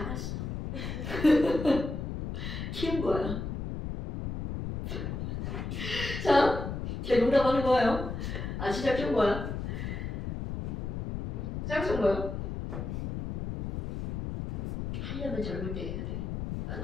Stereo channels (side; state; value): left; noise; rumble, 5 dB below the sound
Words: 키운 거야. 자, 제 농담하는 거예요. 진짜 키운 거야. 짝퉁 거야. 하려면 젊을 때 해야 돼.